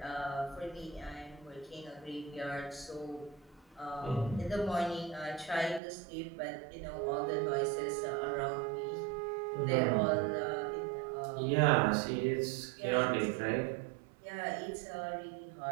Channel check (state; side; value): drops out; left; at 5.8 s